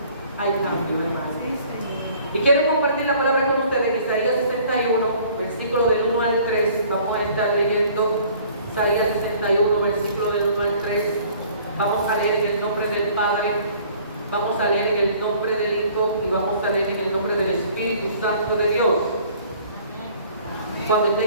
hay cambio, hermano. Y quiero compartir la palabra con ustedes en Isaías 61, versículo del 1 al 3. Vamos a estar leyendo Isaías 61, versículo del 1 al 3. Vamos a leer en el nombre del Padre, vamos a leer en el nombre del Hijo y vamos a leer en el nombre del Espíritu Santo de Dios. Cuando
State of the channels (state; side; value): inverted; both; correlation -0.54